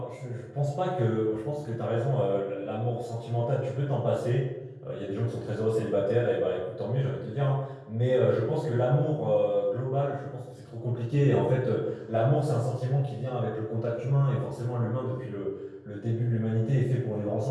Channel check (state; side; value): identical; both; correlation 1.00